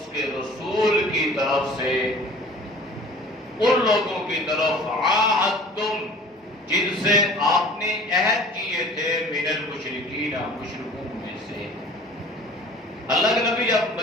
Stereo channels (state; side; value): normal; both; correlation 0.46